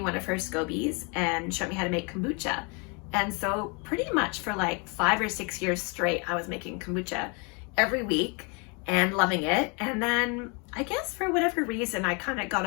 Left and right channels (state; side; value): quieter; right; 32.5 dB